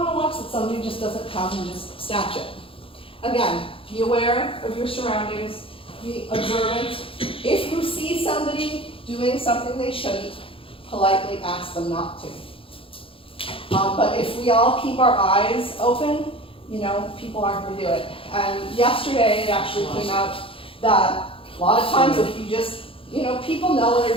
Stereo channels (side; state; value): right; late; 0.26 ms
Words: to watch that somebody just doesn't come and just snatch it. Again, be aware of your surroundings, be observant. If you see somebody doing something they shouldn't, politely ask them not to. But if we all keep our eyes open, people aren't going to do it. And yesterday it actually came out that a lot of times if you just, people know when